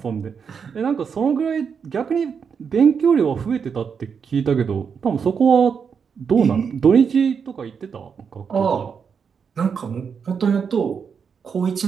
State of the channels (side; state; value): left; quieter; 6.4 dB